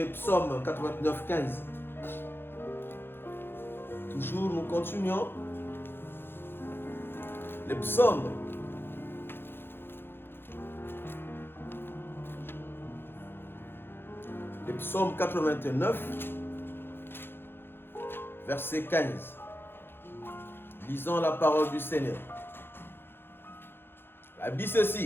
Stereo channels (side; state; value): right; late; 0.10 ms